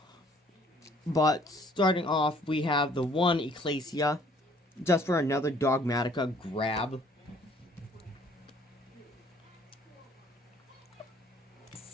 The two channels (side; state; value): both; normal; correlation 0.58